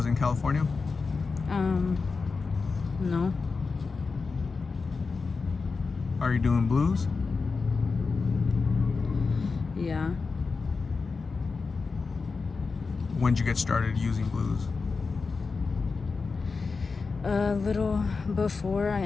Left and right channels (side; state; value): right; quieter; 4.5 dB